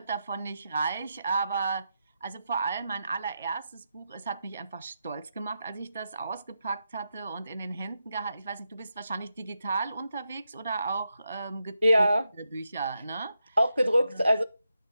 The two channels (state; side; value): inverted; both; correlation -0.86